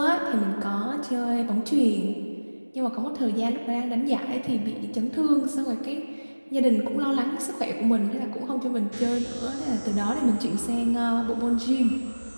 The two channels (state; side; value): inverted; both; correlation -1.00